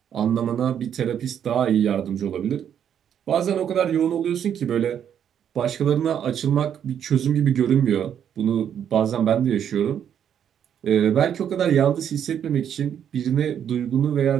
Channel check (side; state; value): left; quieter; 9.0 dB